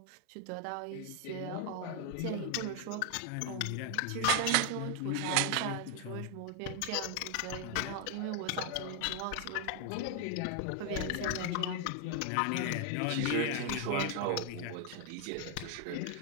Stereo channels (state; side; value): different; both; correlation 0.01